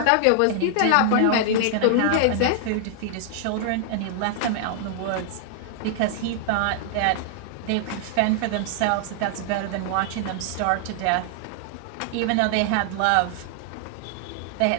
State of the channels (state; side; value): different; both; correlation 0.00